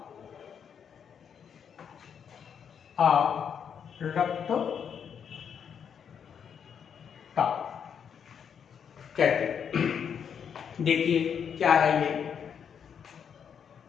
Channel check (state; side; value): quieter; right; 7.6 dB